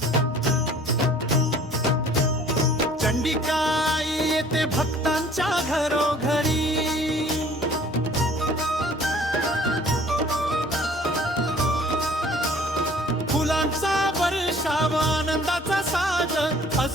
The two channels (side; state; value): both; normal; correlation 0.52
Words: चंडिकाई येते भक्तांच्या घरोघरी, फुलांचा वर्षाव आनंदाचा साज,